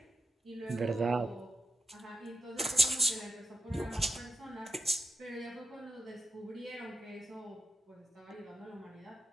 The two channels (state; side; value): normal; both; correlation 0.85